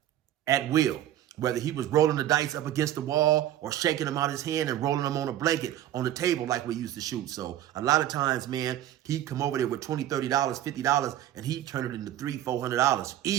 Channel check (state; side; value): quieter; left; 12.4 dB